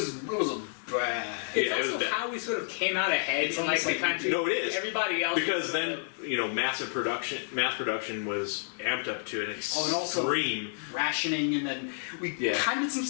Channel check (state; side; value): silent; right; digital silence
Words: a bad. It's Yeah, it also was bad. how we sort of came out ahead in like the country. No, it is. Everybody else Because was then, you know, mass production was amped up to an and also extreme. rationing, and then we kind of did some